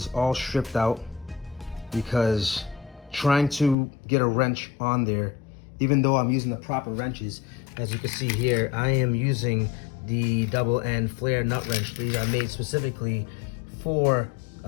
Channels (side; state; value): right; drops out; at 3.8 s